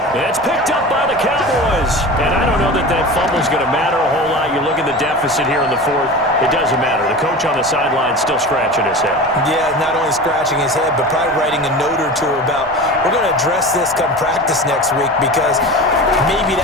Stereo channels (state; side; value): normal; both; correlation 0.32